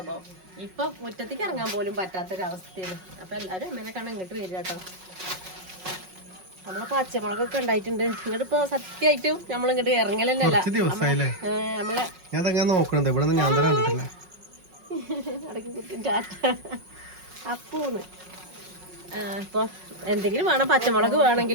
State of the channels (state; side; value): late; left; 5.4 ms